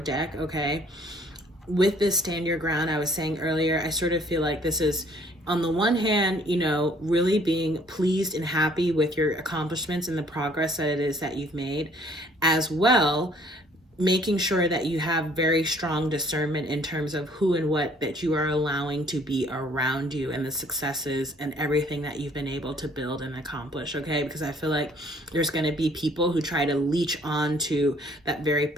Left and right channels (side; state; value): both; normal; correlation 0.59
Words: deck, okay? With this stand your ground, I was saying earlier, I sort of feel like this is, on the one hand, really being pleased and happy with your accomplishments and the progress that it is that you've made, as well making sure that you have very strong discernment in terms of who and what that you are allowing to be around you, and the successes and everything that you've been able to build and accomplish, okay? Because I feel like there's going to be people who try to leech on to that very